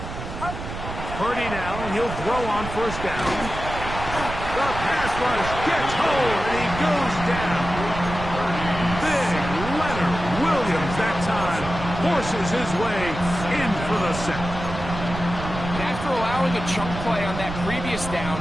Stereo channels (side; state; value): right; noise; rumble, 8 dB below the sound